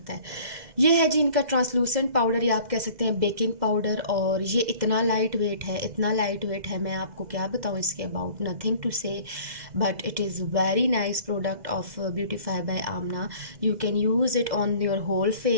है। ये है जी इनका ट्रांसलूसेंट पाउडर, या आप कह सकते हैं बेकिंग पाउडर। और ये इतना लाइट वेट है, इतना लाइट वेट है, मैं आपको क्या बताऊँ इसके about, nothing to say, but it is very nice product of Beautify by Amna. You can use it on your whole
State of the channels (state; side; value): late; left; 2.0 ms